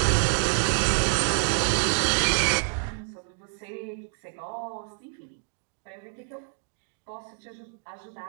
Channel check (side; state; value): left; silent; 59 dB below the other